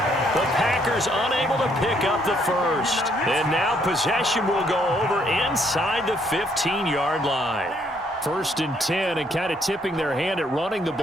The Packers unable to pick up the first. And now possession will go over inside the 15-yard line. 1st and 10, and kind of tipping their hand at running the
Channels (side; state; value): both; normal; correlation 0.69